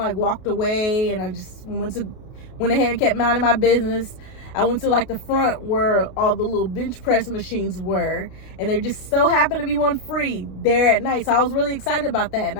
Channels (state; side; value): late; right; 32 ms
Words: walked away, and I just went ahead and kept minding my business. I went to like the front where all the little bench press machines were, and there just so happened to be one free there at night. So I was really excited about that, and